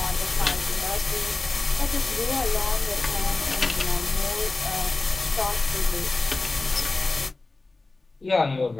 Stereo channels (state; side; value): quieter; right; 3.4 dB